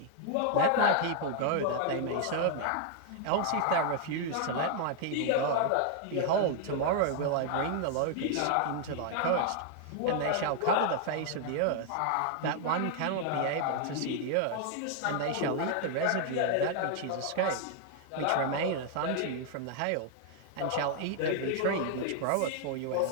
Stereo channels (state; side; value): different; both; correlation 0.00